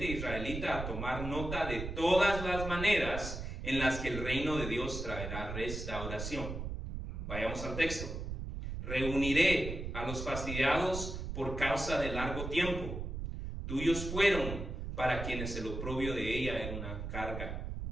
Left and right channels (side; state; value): right; noise; rumble, 6 dB below the sound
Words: israelita a tomar nota de todas las maneras en las que el reino de Dios traerá restauración. Vayamos al texto. Reuniré a los fastidiados por causa de largo tiempo. Tuyos fueron para quienes el oprobio de ella era una carga.